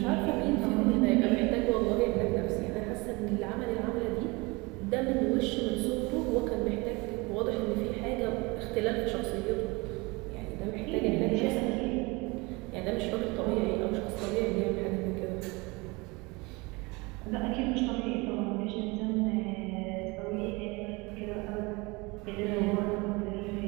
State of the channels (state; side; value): quieter; left; 25.5 dB